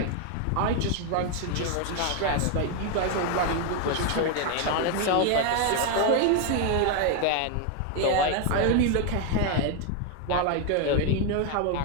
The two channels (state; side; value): different; both; correlation 0.01